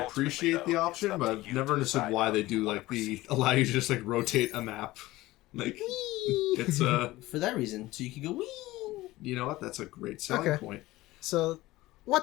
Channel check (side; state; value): right; quieter; 18.1 dB